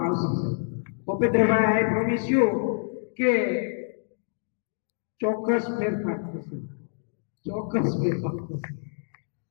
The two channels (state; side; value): silent; right; digital silence